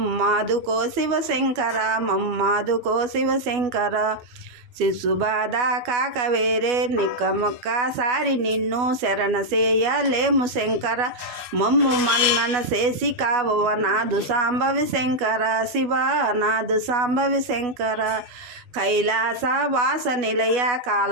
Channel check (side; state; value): left; late; 12 ms